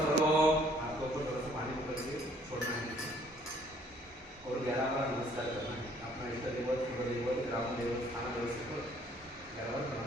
आपको ऊपर थोड़ा सा पानी ऊपर के छोड़ना है और 11 बार नमस्कार करना है। अपना इष्ट देवत, कुल देवत, ग्राम देवत, स्थान देवत से 11 बार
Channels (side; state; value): both; normal; correlation 0.60